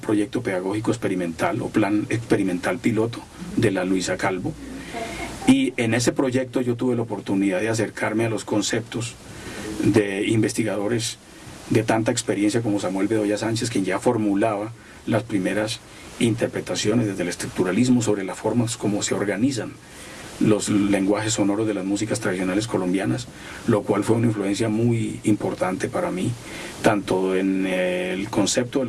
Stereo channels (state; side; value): identical; both; correlation 1.00